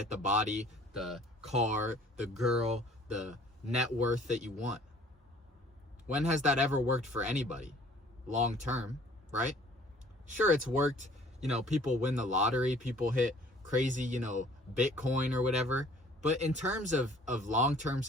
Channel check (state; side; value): normal; both; correlation 0.54